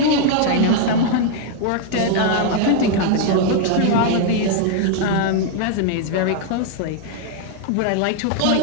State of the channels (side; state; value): both; different; correlation 0.00